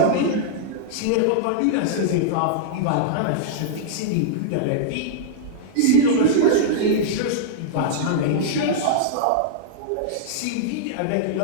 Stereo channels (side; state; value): both; different; correlation -0.02